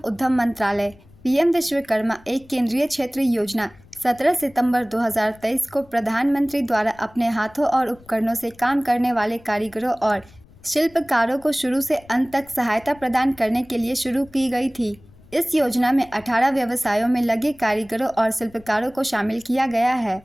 उद्यम मंत्रालय। पीएम विश्वकर्मा एक केंद्रीय क्षेत्रीय योजना 17 सितंबर 2023 को प्रधानमंत्री द्वारा अपने हाथों और उपकरणों से काम करने वाले कारीगरों और शिल्पकारों को शुरू से अंत तक सहायता प्रदान करने के लिए शुरू की गई थी। इस योजना में 18 व्यवसायों में लगे कारीगरों और शिल्पकारों को शामिल किया गया है।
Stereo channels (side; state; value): left; noise; rumble, 25 dB below the sound